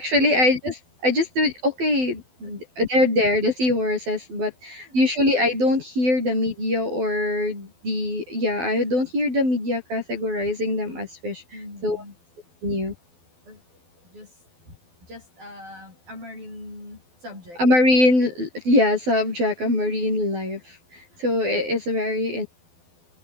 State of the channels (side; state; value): left; late; 12 ms